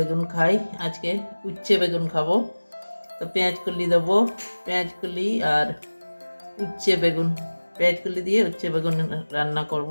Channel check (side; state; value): both; inverted; correlation -1.00